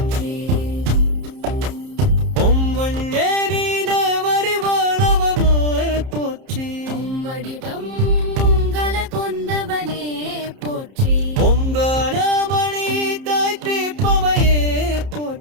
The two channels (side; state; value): left; late; 30 ms